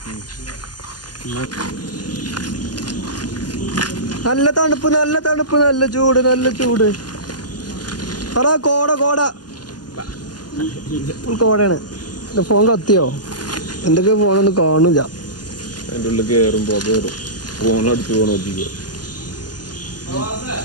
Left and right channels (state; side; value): late; right; 0.70 ms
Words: നല്ല തണുപ്പ് നല്ല ചൂട്. പറ കോടയാണ്. ഫോൺ കത്തിയോ? എന്തൊക്കെ ഫോണൊന്നും കാണില്ല. അതിന്റെ ഉള്ളിൽ കയറുമ്പോ ഫോൺ അടിച്ച് പോകണം.